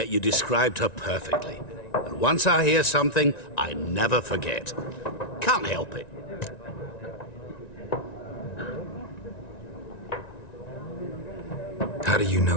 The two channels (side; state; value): right; late; 1.9 ms